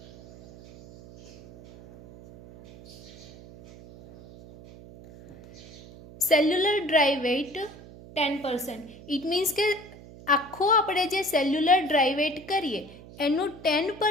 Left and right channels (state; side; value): noise; right; hum, 19 dB below the sound